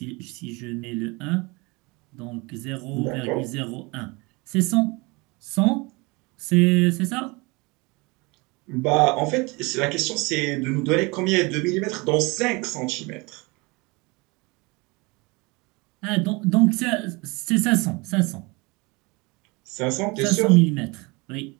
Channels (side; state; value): left; quieter; 26.3 dB